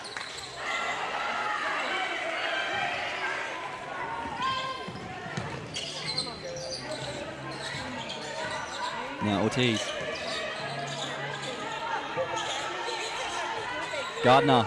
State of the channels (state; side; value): identical; both; correlation 1.00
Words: Now Ortiz. Gardner